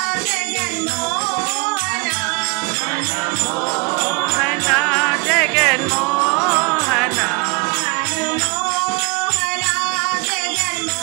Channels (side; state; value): left; quieter; 28.1 dB